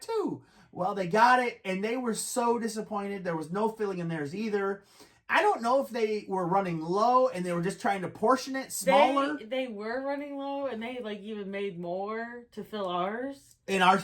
too. Well, they got it, and they were so disappointed. There was no filling in theirs either. I don't know if they were running low and they were just trying to portion it smaller. They were running low, and they like even made more to fill ours. And ours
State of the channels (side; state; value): both; identical; correlation 1.00